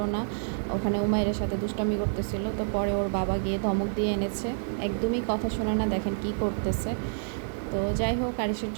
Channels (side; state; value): left; silent; 59 dB below the other